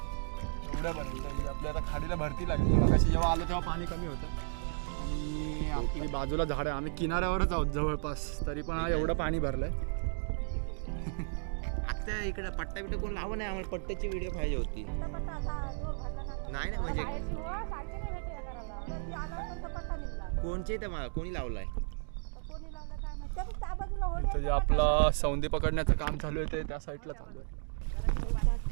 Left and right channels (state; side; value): silent; left; digital silence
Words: एवढ्यापर्यंत आपल्या आता खाडीला भरती लागली. मगाशी जेव्हा आलो तेव्हा पाणी कमी होतं आणि आपली बाजूला झाड आहे. आम्ही किनाऱ्यावरच आहोत जवळपास, तरी पण हा एवढं पाणी भरलंय. आता इकडे पट्टा बिट्टा कोण लावू नाही. आम्हाला पट्ट्याची व्हिडिओ पाहिजे होती. नाही ना म्हणजे कोणचे तर मला कोणी लावलाय. इथं जे आपला सौंदी पकडण्याचं काम चालू आहे ते त्या साईडला चालू आहे.